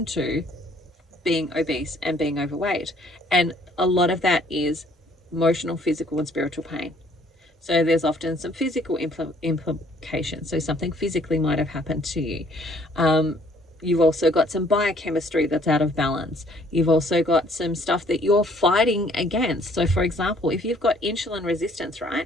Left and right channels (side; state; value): both; normal; correlation 0.61